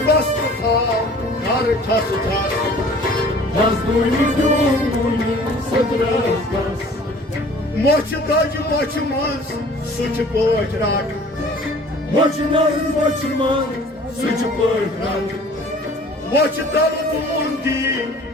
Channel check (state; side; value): normal; both; correlation 0.50